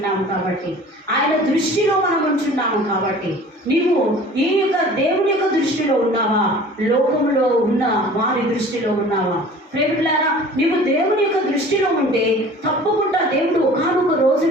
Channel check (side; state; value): both; normal; correlation 0.45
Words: కాబట్టి, ఆయన దృష్టిలో మనం ఉంచున్నాము కాబట్టి. నీవు ఈ యొక్క దేవుని యొక్క దృష్టిలో ఉన్నావా? లోకంలో ఉన్న వారి దృష్టిలో ఉన్నావా? ప్రేమికులారా, నీవు దేవుని యొక్క దృష్టిలో ఉంటే తప్పకుండా దేవుడు ఒకానొక